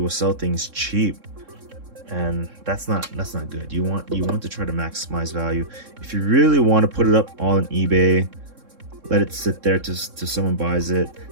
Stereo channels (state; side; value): late; left; 3.6 ms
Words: will sell things cheap, and that's not good. You want to try to maximize value. If you really want to put it up on eBay, let it sit there to someone buys it.